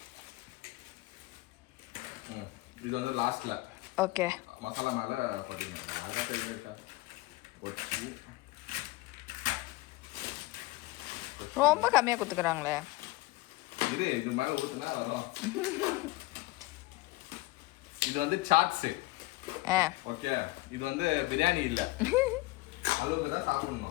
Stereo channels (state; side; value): quieter; right; 20.2 dB